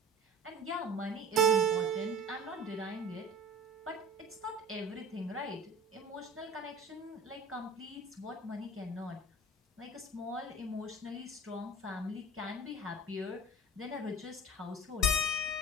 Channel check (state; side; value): normal; both; correlation 0.39